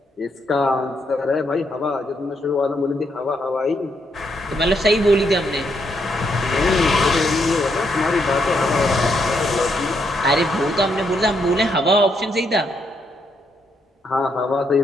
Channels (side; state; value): both; normal; correlation 0.77